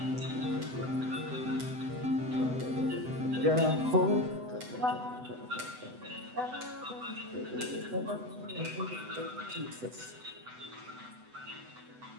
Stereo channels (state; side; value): late; left; 8.0 ms